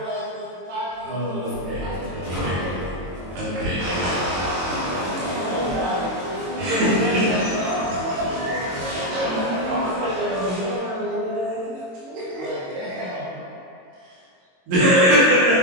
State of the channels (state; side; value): late; left; 22 ms